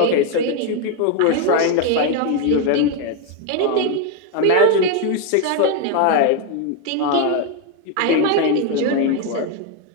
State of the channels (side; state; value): both; different; correlation 0.02